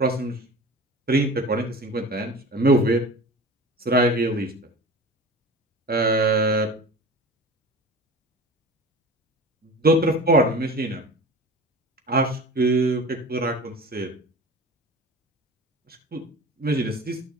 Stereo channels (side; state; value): both; normal; correlation 0.36